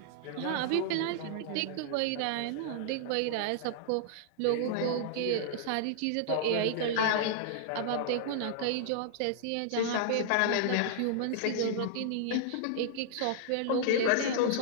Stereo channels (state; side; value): different; both; correlation -0.01